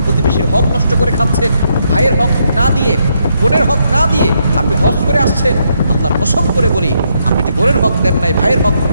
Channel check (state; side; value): inverted; both; correlation -0.77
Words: প্রতিবেশীর হক নষ্ট করে খাচ্ছেন, ভাইয়ের হক না দিয়ে, বোনের হক না দিয়ে আপনি হজ করে আসছেন, আল্লাহর কসম করে বলি, আপনি যে বোনের হক দেন নাই, ভাইয়ের হক